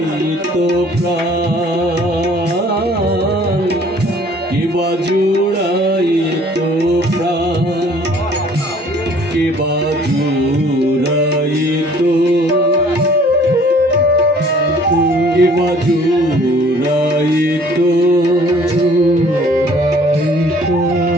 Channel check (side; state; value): both; normal; correlation 0.55